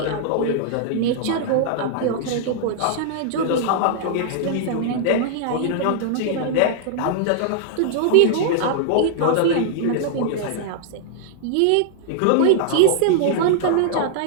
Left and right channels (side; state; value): both; different; correlation -0.01